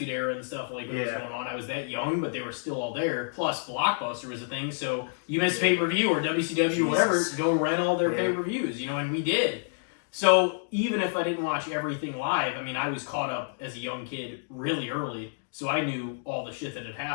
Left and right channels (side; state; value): right; silent; digital silence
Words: Era and stuff like what was going on. I was that young, but they were still all there. Plus, Blockbuster was a thing, so you missed pay per view or WCW or whatever, go rent all their pay per views. You know, and we did. So even if I didn't watch everything live, I mean, I was caught up as a young kid really early, so I knew all the shit that had